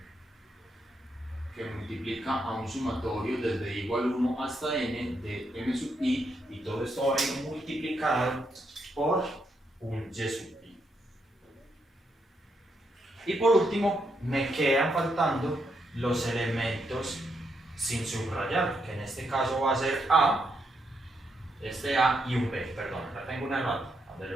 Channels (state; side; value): normal; both; correlation 0.79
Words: que multiplica a un sumatorio desde i igual 1 hasta n de m sub i, y todo esto va a ir multiplicado por un y sub i. Y por último, me quedan faltando los elementos sin subrayar, que en este caso va a ser a, este a y un b, perdón, acá tengo un error,